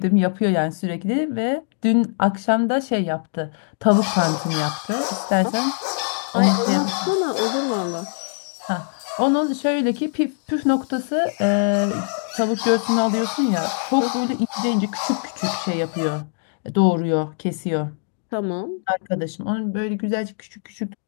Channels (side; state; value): right; silent; digital silence